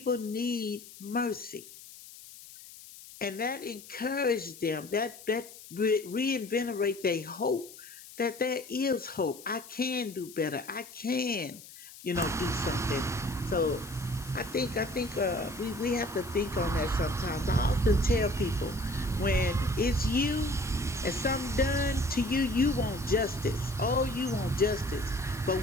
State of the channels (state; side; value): noise; left; hiss, 17 dB below the sound